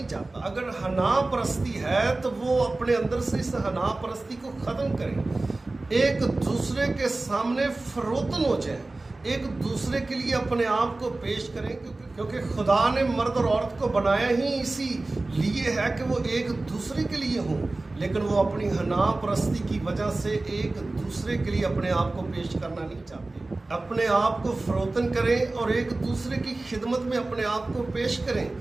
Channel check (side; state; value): left; quieter; 3.1 dB